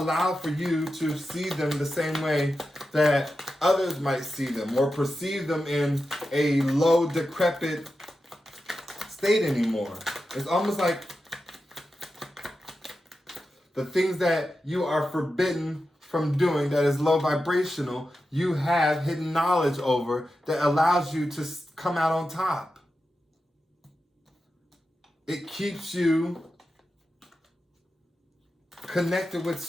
for you to see them the same way that others might see them or perceive them in a low, decrepit state anymore. It's almost like the things that you are forbidden from doing that is low vibrational, you have hidden knowledge over that allows you to come out on top. It keeps you connected with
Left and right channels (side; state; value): both; normal; correlation 0.91